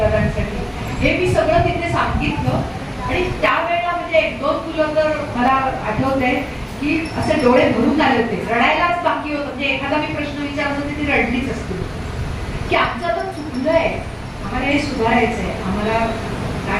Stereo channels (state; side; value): identical; both; correlation 1.00